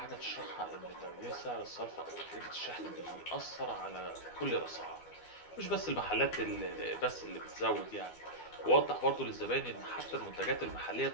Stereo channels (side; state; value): right; late; 12 ms